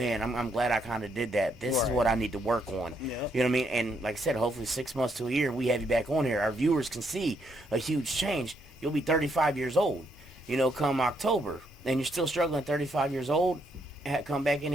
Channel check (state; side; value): normal; both; correlation 0.75